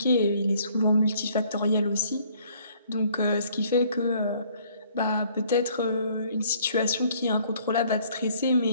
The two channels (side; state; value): both; inverted; correlation -0.61